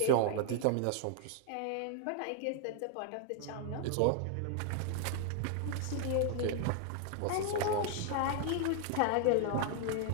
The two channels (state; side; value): different; both; correlation 0.00